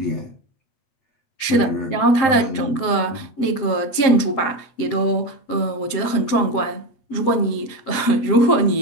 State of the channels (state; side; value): late; right; 7.6 ms